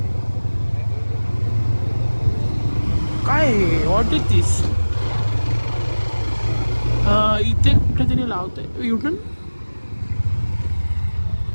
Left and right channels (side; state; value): both; inverted; correlation -1.00